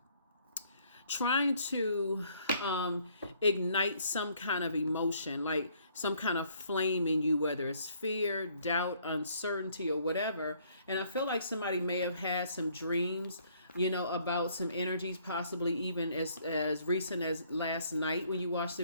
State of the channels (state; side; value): inverted; both; correlation -0.64